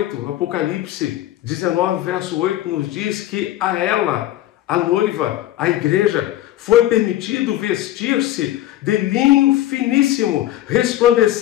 Apocalipse 19, verso 8, nos diz que a ela, a noiva, a igreja, foi permitido vestir-se de linho finíssimo,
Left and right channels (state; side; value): quieter; right; 13.9 dB